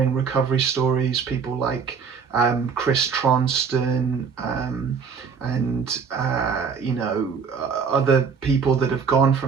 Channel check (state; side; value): quieter; left; 6.1 dB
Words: recovery stories, people like Chris Tronston, and other people that have gone